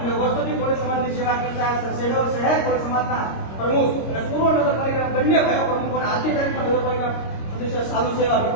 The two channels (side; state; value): right; late; 26 ms